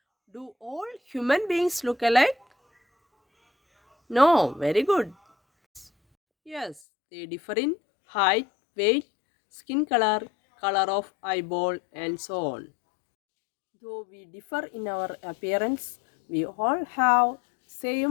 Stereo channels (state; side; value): drops out; right; at 6.8 s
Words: Do all human beings look alike? No, very good. Yes, they differ in height, weight, skin color, color of eyeball, and so on. Though we differ in our appearance, we all have